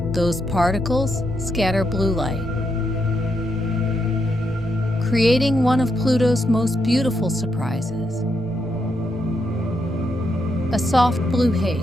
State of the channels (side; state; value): both; normal; correlation 0.81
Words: Those particles scatter blue light, creating one of Pluto's most beautiful surprises, a soft blue